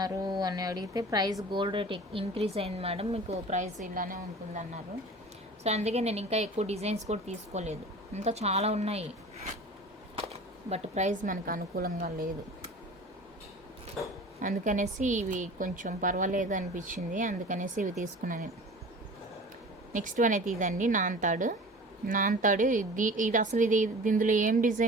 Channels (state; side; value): normal; both; correlation 0.40